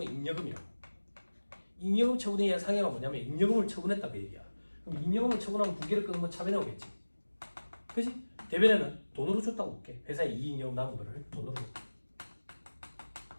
잉여금이라고. 잉여금 처분에 의한 상해가 뭐냐면 잉여금을 처분했다 그 얘기야. 그럼 잉여금을 처분하면 부계를 끊으면 차변에 오겠지. 그지? 대변에는 돈으로 줬다고 볼게. 회사에 이익잉여금 남은 거를 돈으로 줬다.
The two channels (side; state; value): both; inverted; correlation -1.00